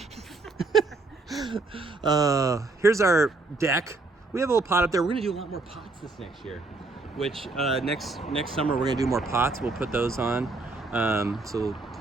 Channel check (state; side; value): quieter; left; 3.4 dB